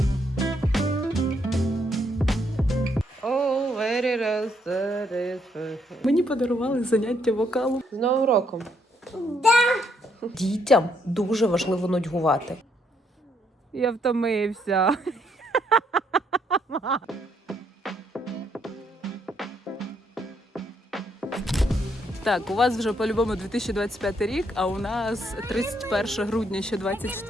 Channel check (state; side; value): normal; both; correlation 0.72